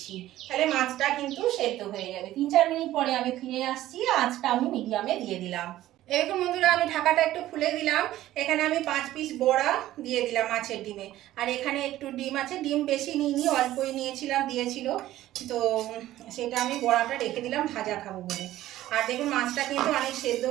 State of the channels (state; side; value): quieter; left; 14.5 dB